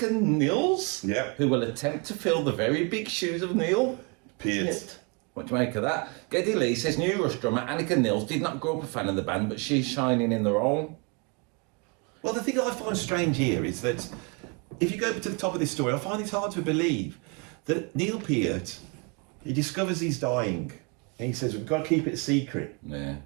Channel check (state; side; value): quieter; left; 33.4 dB